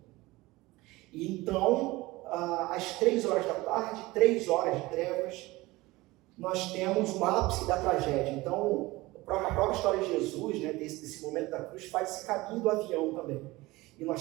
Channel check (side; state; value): left; quieter; 20.4 dB